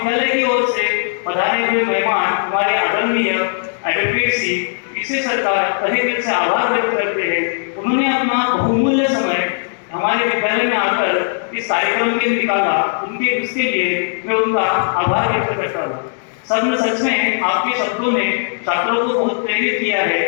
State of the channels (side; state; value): right; silent; 68 dB below the other